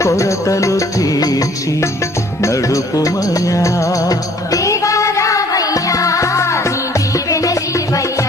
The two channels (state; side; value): normal; both; correlation 0.57